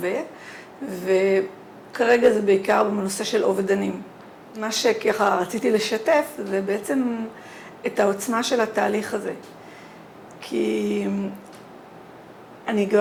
וכרגע זה בעיקר בנושא של אובדנים. מה שככה רציתי לשתף זה בעצם את העוצמה של התהליך הזה. כי אני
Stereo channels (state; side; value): identical; both; correlation 1.00